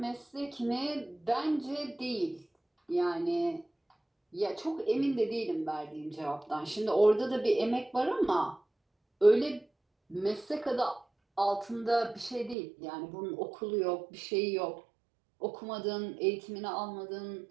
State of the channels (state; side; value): drops out; left; at 12.6 s